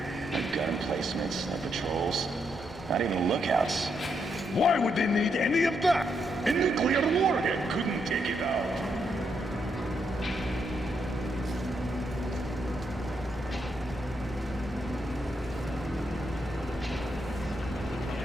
No gun placements, no patrols, not even lookouts. Why would they need any of that? A nuclear warhead couldn't take it out.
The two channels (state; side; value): normal; both; correlation 0.79